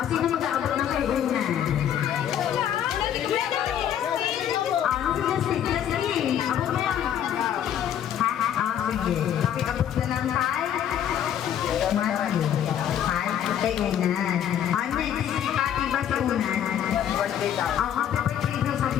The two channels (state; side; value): quieter; right; 9.9 dB